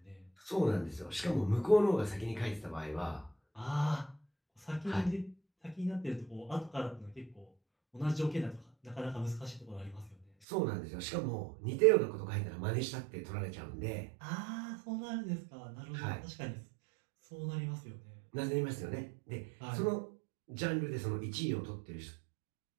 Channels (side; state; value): left; drops out; at 10.2 s